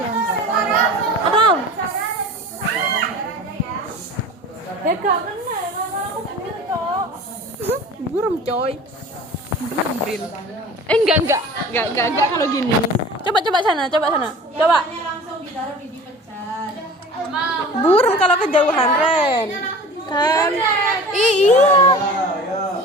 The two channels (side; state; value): both; normal; correlation 0.40